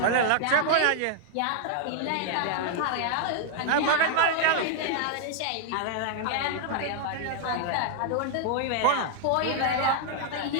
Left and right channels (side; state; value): both; different; correlation -0.01